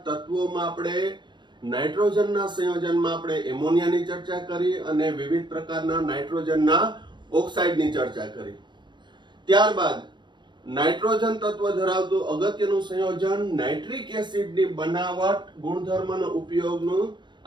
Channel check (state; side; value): late; left; 0.22 ms